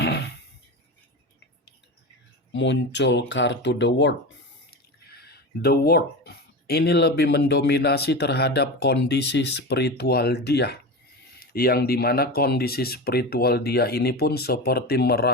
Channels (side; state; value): both; normal; correlation 0.24